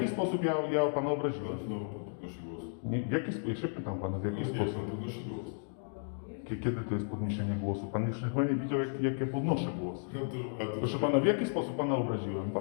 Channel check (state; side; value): silent; right; digital silence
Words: sposób ja pana obraziłem? Znowu pan podnosi głos. Nie, w jaki sposób? Ja się pytam pana, w jaki Nie, sposób? pan podnosi głos. Kiedy to jest podniesienie głosu? Pan jeszcze chyba nie widział, jak ja podnoszę głos. A to Proszę pana, w jaki sposób pana obraziłem?